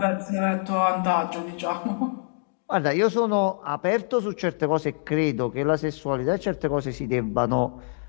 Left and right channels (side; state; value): right; silent; digital silence